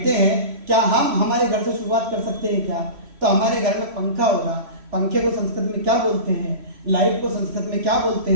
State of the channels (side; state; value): left; late; 3.1 ms